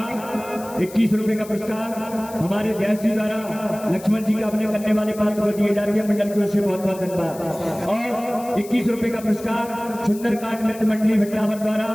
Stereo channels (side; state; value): left; noise; hiss, 18 dB below the sound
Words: 21 रुपए का पुरस्कार हमारे व्यास जी द्वारा लक्ष्मण जी का अपने करने वाले पात्र को दिए जा रहे हैं, मंडल की ओर से बहुत बहुत धन्यवाद। और 21 रुपए का पुरस्कार सुंदरकांड मित्र मंडली भटनावर द्वारा